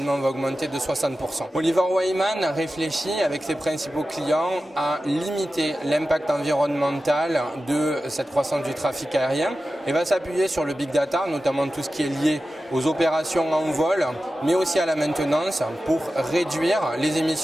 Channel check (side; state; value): both; normal; correlation 0.93